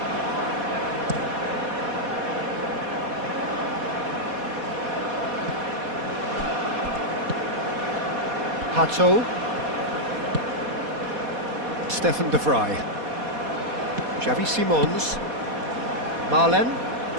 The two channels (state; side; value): late; left; 4.2 ms